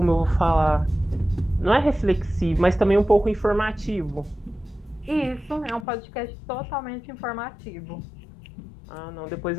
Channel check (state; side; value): drops out; right; at 5.9 s